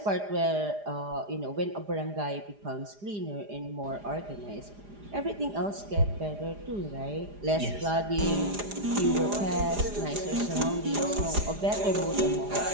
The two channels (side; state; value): left; late; 4.9 ms